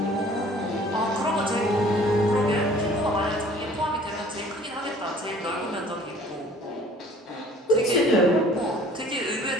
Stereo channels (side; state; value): both; normal; correlation 0.51